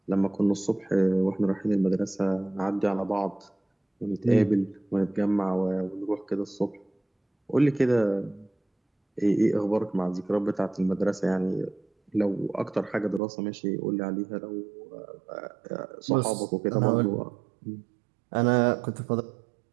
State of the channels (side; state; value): left; drops out; at 13.2 s